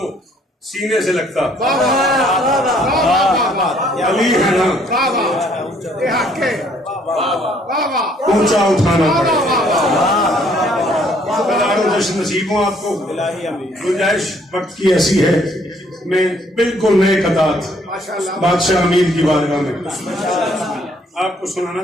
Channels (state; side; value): normal; both; correlation 0.64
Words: सीने से लगता, अली है ना ऊंचा उठाना पड़ेगा। जश्न नसीब हूँ आपको। गुंजाइश वक्त की ऐसी है, मैं बिल्कुल नए कतार बादशाह अमीर की बारगाह में आपको सुनाना